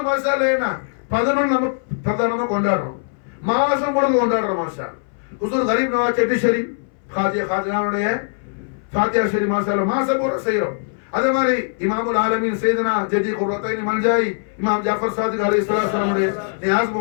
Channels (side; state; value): right; silent; 62 dB below the other